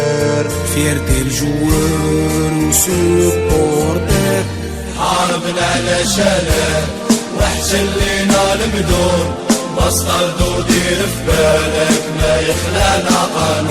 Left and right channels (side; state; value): both; identical; correlation 1.00